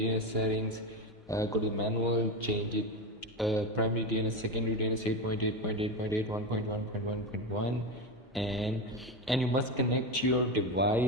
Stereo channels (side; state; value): both; normal; correlation 0.17